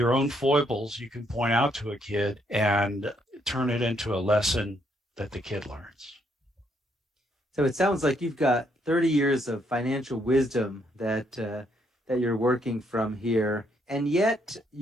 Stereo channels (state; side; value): normal; both; correlation 0.72